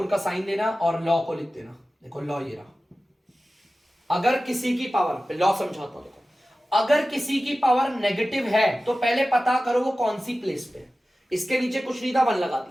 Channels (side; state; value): both; normal; correlation 0.95